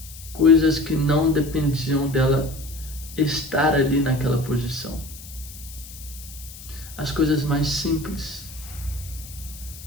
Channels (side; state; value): left; noise; hiss, 16 dB below the sound